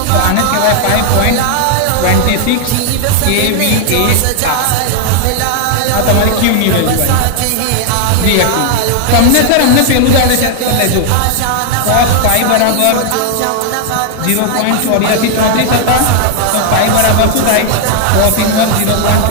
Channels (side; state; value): both; different; correlation 0.00